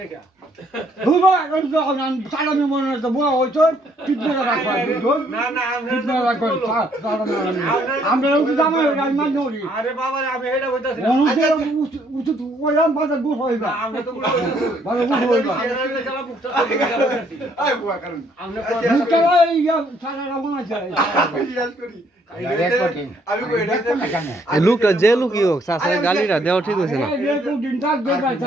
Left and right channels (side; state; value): both; normal; correlation 0.67